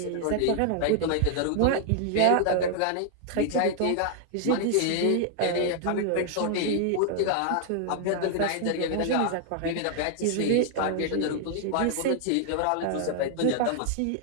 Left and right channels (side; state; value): both; different; correlation 0.00